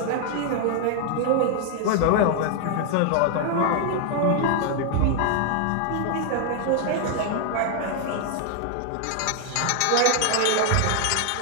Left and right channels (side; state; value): both; different; correlation 0.00